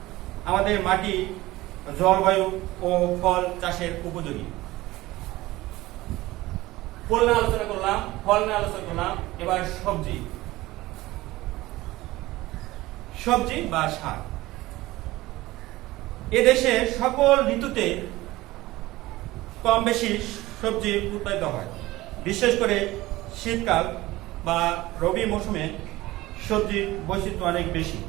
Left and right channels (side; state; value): left; quieter; 18.3 dB